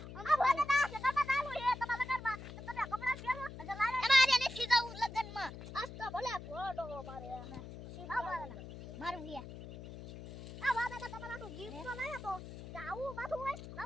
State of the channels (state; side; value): noise; left; hum, 12 dB below the sound